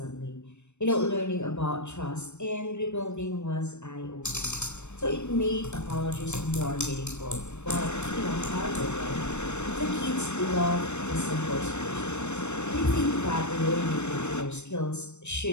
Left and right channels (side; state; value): right; late; 0.82 ms